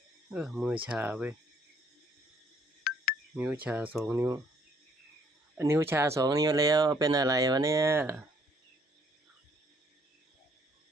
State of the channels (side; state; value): both; normal; correlation 0.64